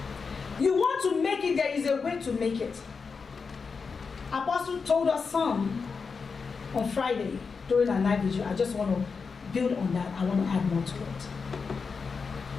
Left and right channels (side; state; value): right; quieter; 5.1 dB